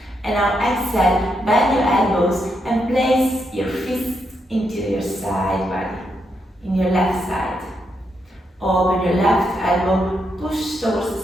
And now exhale, bend your elbows and place your fist into your side body, in your left side. Open your left elbow, push towards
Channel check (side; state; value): both; normal; correlation 0.81